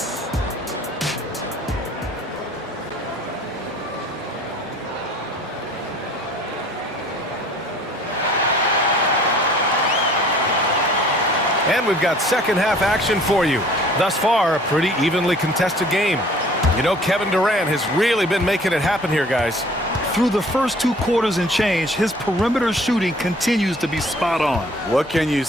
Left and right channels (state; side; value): normal; both; correlation 0.52